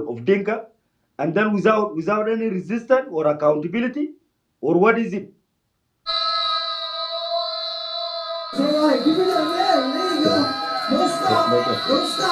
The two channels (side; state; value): both; identical; correlation 1.00